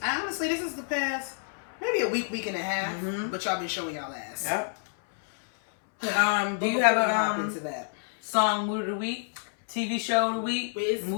honestly, this is the past maybe a week and a half, but y'all been showing y'all ass. Yep. Do you have a into that song mood of the week, TV show of the week,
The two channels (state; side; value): silent; right; 59 dB below the other